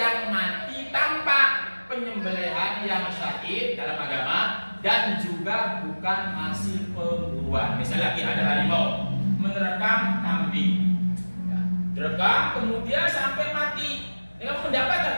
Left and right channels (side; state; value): both; inverted; correlation -1.00